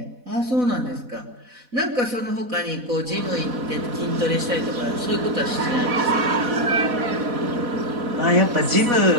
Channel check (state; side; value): late; left; 4.1 ms